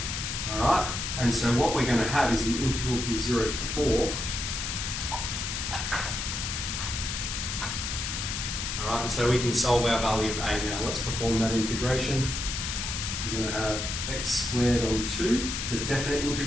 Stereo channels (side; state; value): left; noise; hiss, 3 dB below the sound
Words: Alright? And so what we're going to have is the integral from 0 to 4. Alright, and so we can solve our value of A now. Let's perform that integration. We're going to have x squared on 2. It's a definite